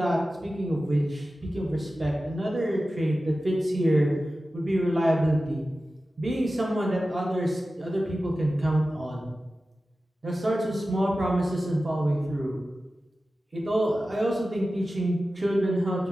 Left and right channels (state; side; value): normal; both; correlation 0.94